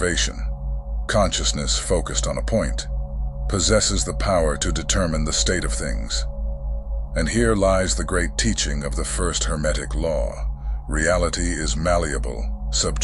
consciousness focused on a point, possesses the power to determine the state of things. And here lies the great teaching of the first Hermetic Law. Reality is malleable,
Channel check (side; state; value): both; identical; correlation 1.00